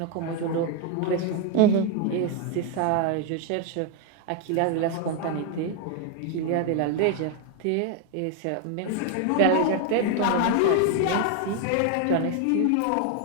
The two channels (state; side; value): different; both; correlation 0.01